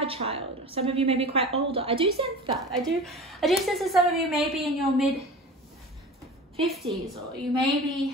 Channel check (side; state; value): both; normal; correlation 0.35